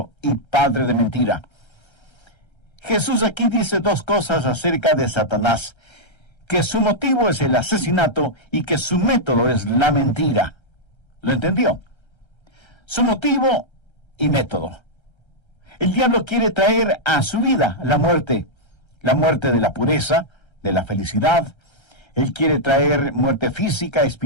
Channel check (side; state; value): right; late; 1.3 ms